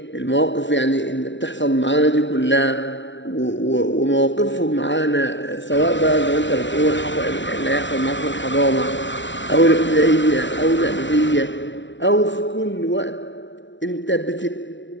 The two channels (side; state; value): right; late; 0.54 ms